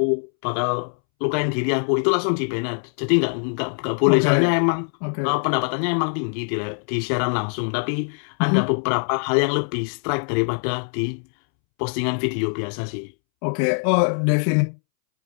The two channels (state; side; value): silent; right; 64 dB below the other